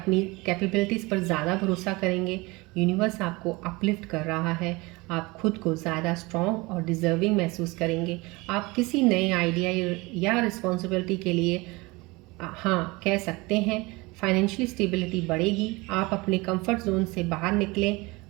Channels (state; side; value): quieter; left; 23.8 dB